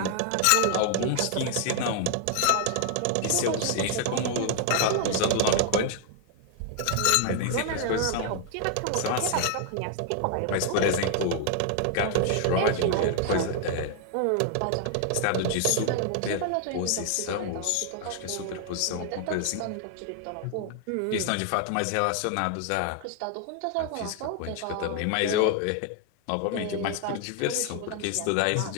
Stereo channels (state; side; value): different; both; correlation 0.00